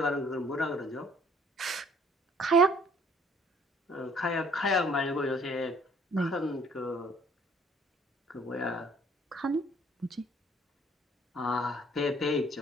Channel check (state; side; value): normal; both; correlation 0.59